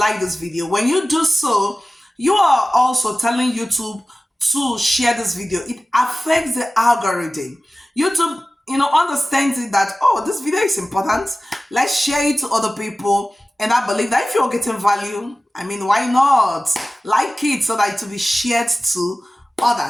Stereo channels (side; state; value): both; normal; correlation 0.96